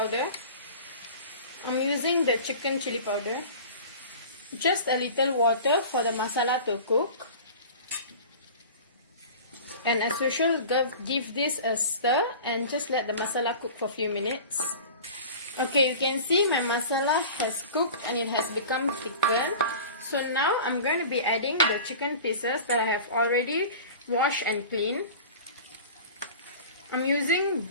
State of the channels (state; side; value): inverted; both; correlation -0.38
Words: I'm using the chicken chili powder. Just a little water for the masala to cook. And as usual, give this a stir and just let the masala cook for a few minutes. Okay, you can see my masala has cooked and it has become thickened. So now I'm going to be adding the chicken pieces that I have already washed and cleaned. I'm using